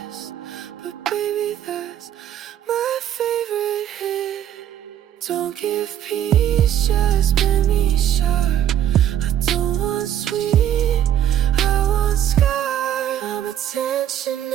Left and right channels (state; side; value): quieter; left; 10.7 dB